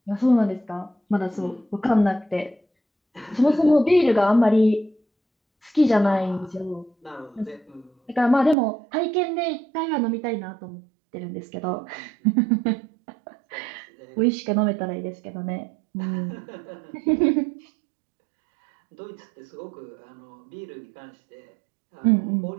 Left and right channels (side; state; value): left; drops out; at 8.6 s